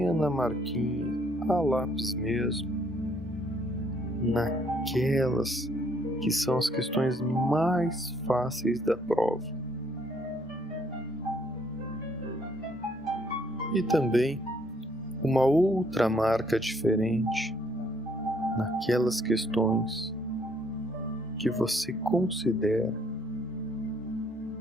marquinha a lápis mesmo, naquelas que são as questões mais fáceis da prova. E também uma outra marca diferente naquelas questões que você considera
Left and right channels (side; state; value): both; normal; correlation 0.66